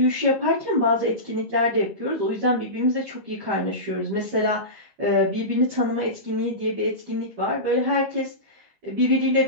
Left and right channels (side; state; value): left; late; 13 ms